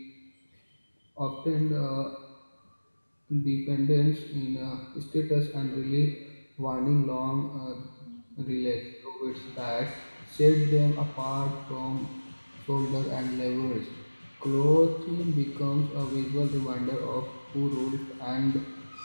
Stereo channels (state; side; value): inverted; both; correlation -1.00